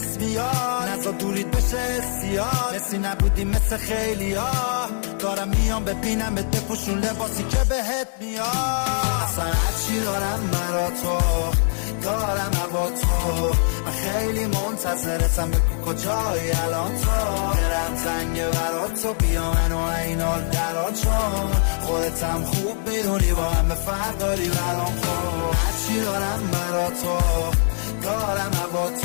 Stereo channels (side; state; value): right; silent; digital silence